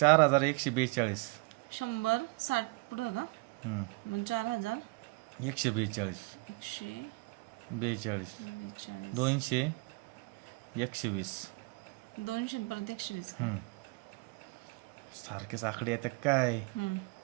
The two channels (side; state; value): left; quieter; 27.1 dB